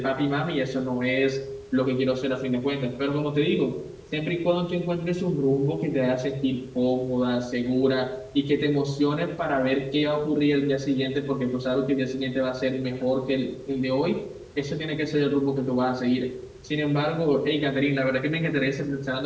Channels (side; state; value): both; identical; correlation 1.00